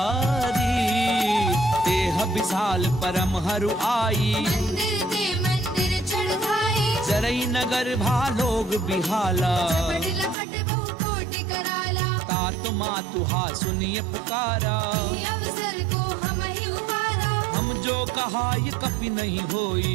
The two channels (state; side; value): drops out; left; at 10.4 s